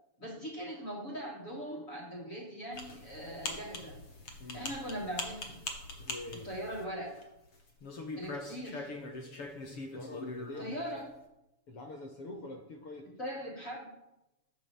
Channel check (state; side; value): late; right; 7.1 ms